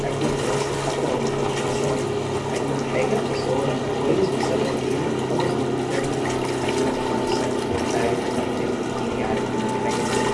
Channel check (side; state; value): both; identical; correlation 1.00